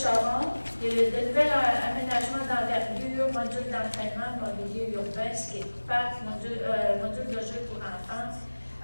il y a de nouveaux aménagements d'envergure, module d'entraînement, mobilier urbain, skatepark, module de jeu pour enfants,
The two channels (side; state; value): both; inverted; correlation -1.00